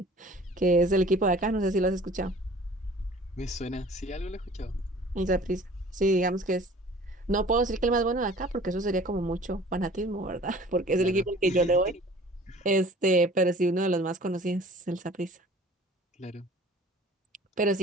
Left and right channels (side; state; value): both; normal; correlation 0.48